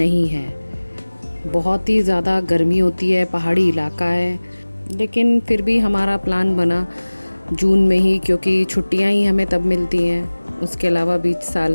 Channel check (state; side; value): inverted; both; correlation -1.00